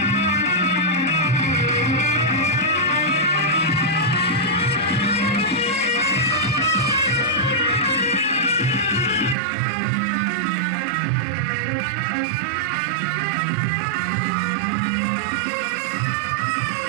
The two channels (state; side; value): drops out; left; at 9.3 s